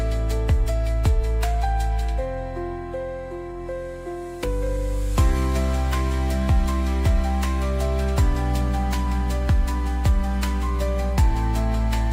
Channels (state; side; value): identical; both; correlation 1.00